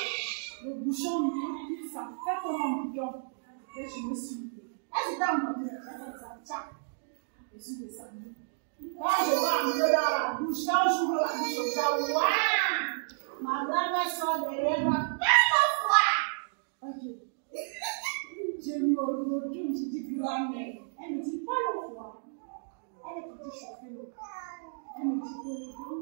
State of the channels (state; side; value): silent; left; digital silence